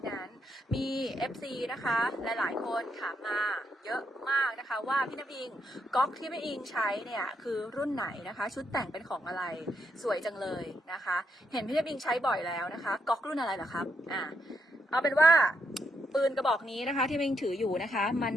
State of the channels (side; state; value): both; normal; correlation 0.79